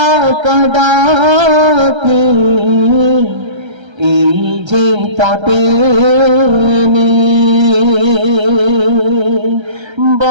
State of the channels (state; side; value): late; left; 1.3 ms